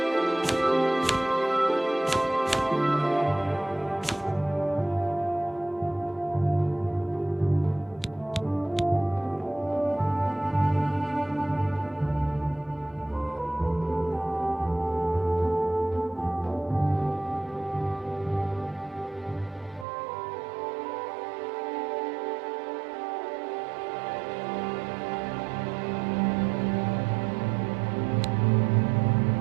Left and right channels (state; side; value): drops out; left; at 19.9 s